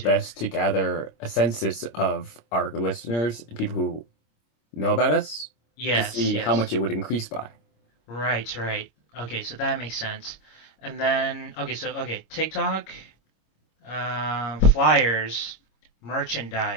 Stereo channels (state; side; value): late; right; 26 ms